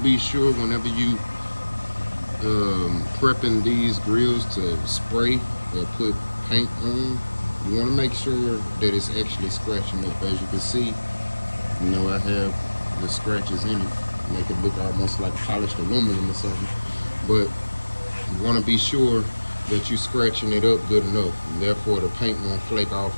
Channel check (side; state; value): both; inverted; correlation -1.00